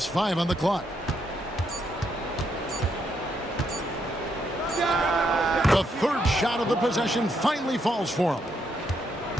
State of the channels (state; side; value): normal; both; correlation 0.76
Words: 5 on the clock. The third shot of the possession finally falls for him.